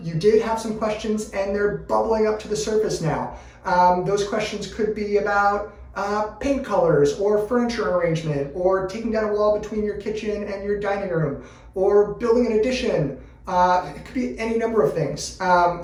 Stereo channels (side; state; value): both; identical; correlation 1.00